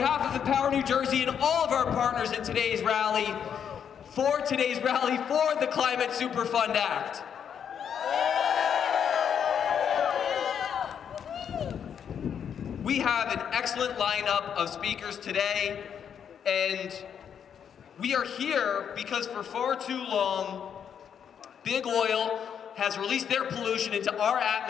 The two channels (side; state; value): right; quieter; 8.1 dB